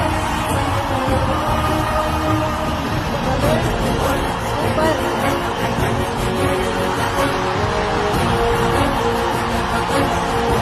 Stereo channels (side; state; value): both; identical; correlation 1.00